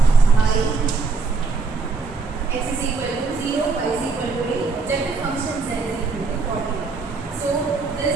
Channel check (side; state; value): left; quieter; 4.4 dB